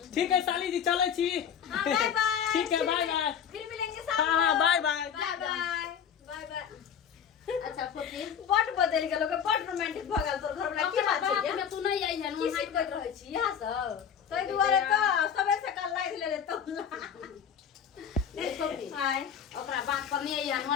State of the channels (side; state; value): right; quieter; 7.9 dB